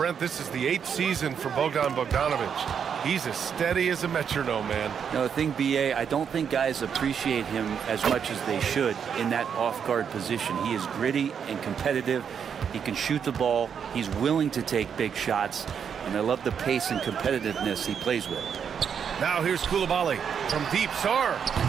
this is the 8th season for Bogdanovich. He's as steady as a metronome, man. No, the thing, BA, I don't think guys appreciate him as much as they should in that off-guard position. He is gritty and competitive. He can shoot the ball. He's willing to take big shots. And I love the pace and competitiveness he plays with. Now here's Koulibaly from deep. Sarr,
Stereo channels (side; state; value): left; quieter; 7.4 dB